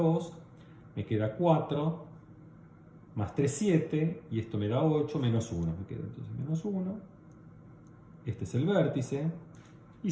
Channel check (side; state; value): both; identical; correlation 1.00